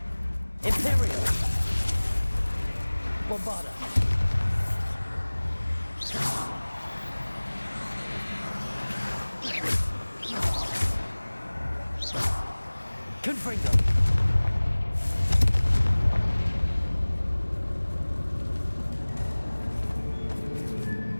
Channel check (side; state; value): both; inverted; correlation -1.00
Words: Imperial. Bombarda. Confringo.